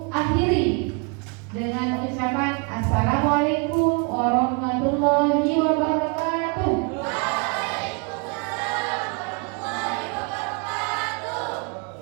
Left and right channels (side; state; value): left; quieter; 33.5 dB